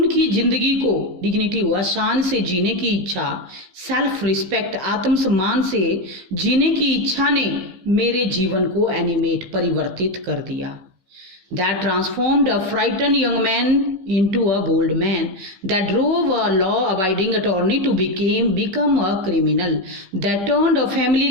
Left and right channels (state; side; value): late; left; 15 ms